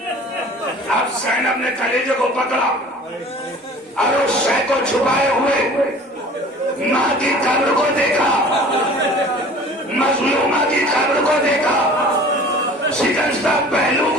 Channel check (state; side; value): normal; both; correlation 0.45